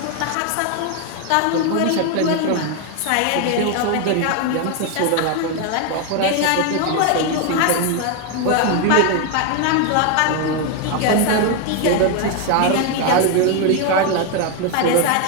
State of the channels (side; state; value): both; different; correlation 0.01